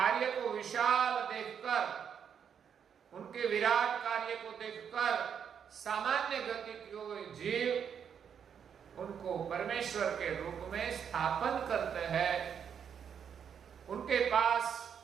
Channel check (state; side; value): quieter; left; 7.8 dB